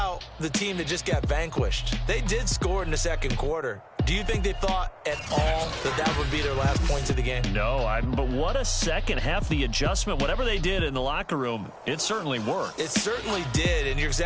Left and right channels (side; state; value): both; identical; correlation 1.00